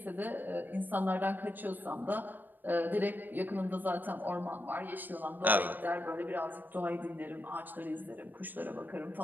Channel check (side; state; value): left; late; 0.090 ms